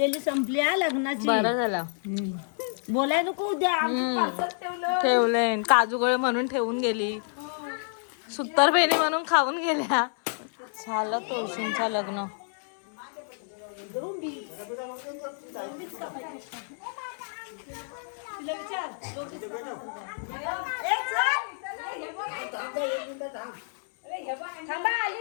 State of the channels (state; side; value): silent; right; 59 dB below the other